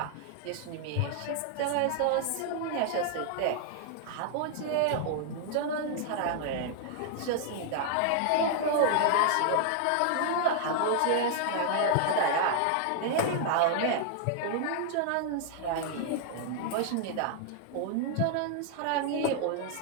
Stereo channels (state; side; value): different; both; correlation 0.00